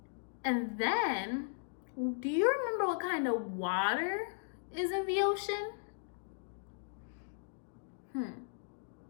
And then, do you remember what kind of water is in the ocean?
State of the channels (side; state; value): right; silent; digital silence